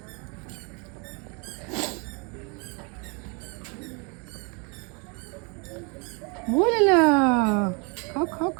বলে না, খাও খাও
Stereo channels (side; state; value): left; quieter; 32.9 dB